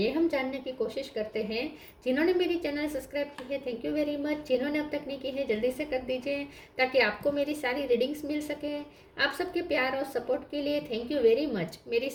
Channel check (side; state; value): both; identical; correlation 1.00